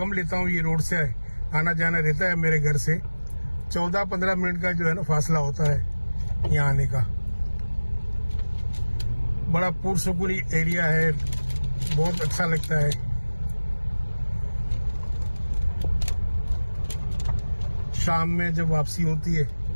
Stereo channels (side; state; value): both; inverted; correlation -1.00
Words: लेता हूँ, ये रोड से आना जाना रहता है मेरे घर से। 14-15 मिनट का जो है ना फासला होता है यहाँ आने का। बड़ा पुरसुकून एरिया है, बहुत अच्छा लगता है। शाम में जब वापसी होती है